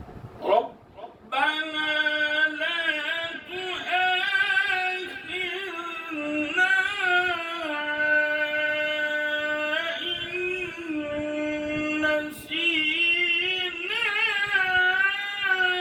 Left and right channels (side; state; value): both; identical; correlation 1.00